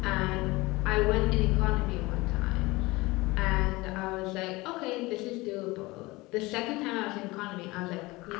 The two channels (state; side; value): quieter; right; 21.8 dB